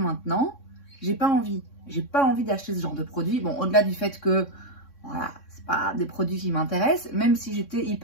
j'ai pas envie d'acheter ce genre de produit. Bon, au-delà du fait que Voilà, c'est pas des produits qui m'intéressent, même si j'étais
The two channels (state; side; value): late; right; 3.6 ms